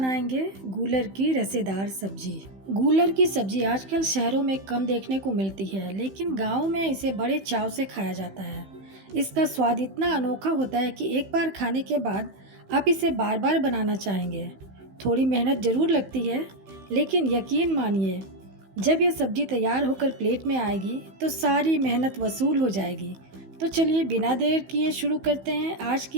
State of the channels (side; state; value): left; late; 15 ms